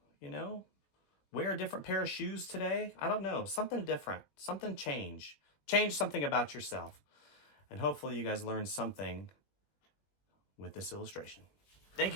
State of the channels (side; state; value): right; late; 20 ms